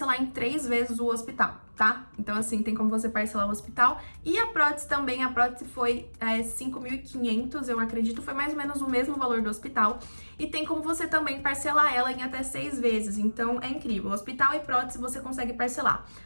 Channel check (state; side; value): inverted; both; correlation -1.00